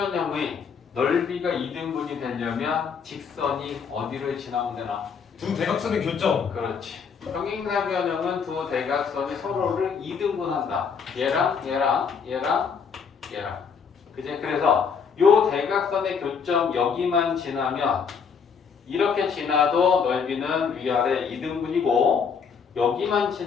넓이가 2등분이 되려면 직선이 어디를 지나면 되나? 두 대각선의 교점. 그렇지. 평행사변형은 두 대각선이 서로를 2등분한다. 얘랑 얘랑 얘랑 얘랑. 그지? 그래서 요 대각선의 교점 여기만 지나면 이렇게 지나도 넓이는 위아래 2등분이고 여기만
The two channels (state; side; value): quieter; right; 6.2 dB